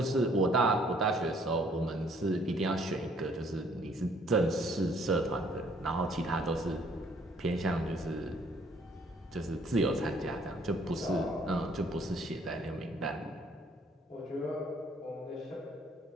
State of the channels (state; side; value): normal; both; correlation 0.62